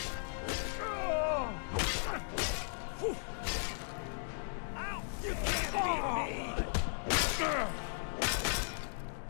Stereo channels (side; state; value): right; silent; digital silence